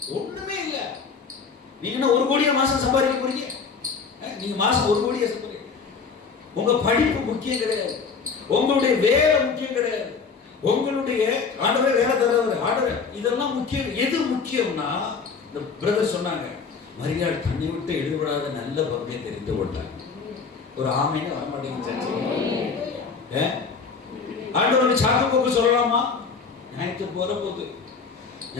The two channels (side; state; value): right; quieter; 5.3 dB